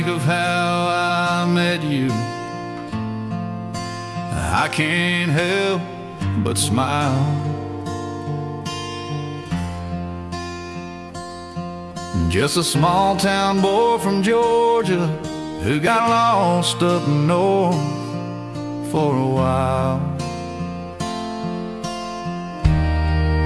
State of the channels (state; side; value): identical; both; correlation 1.00